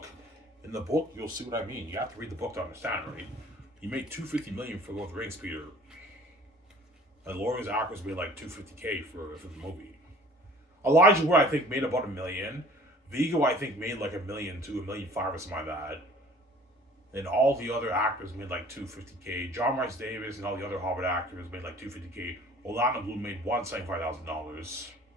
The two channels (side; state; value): both; normal; correlation 0.50